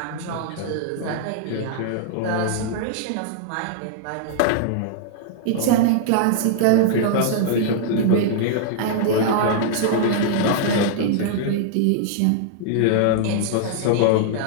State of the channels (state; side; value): different; both; correlation -0.01